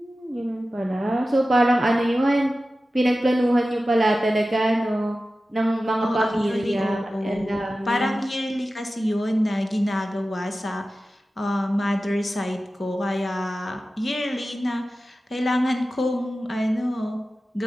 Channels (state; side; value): normal; both; correlation 0.94